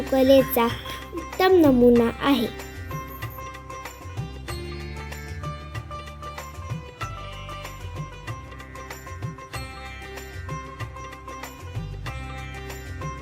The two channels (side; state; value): both; identical; correlation 1.00